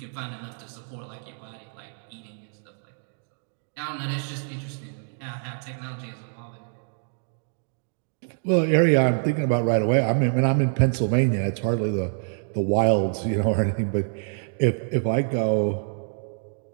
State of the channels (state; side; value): silent; left; 61 dB below the other